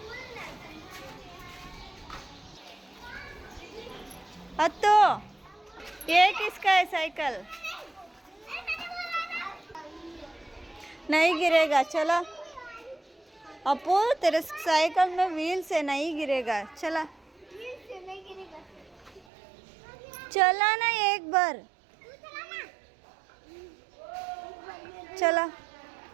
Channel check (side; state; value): left; drops out; at 19.2 s